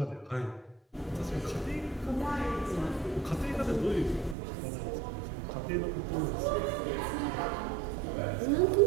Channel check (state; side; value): drops out; left; at 4.4 s